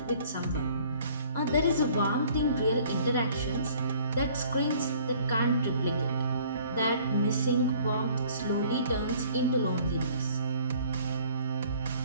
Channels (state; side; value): inverted; both; correlation -0.55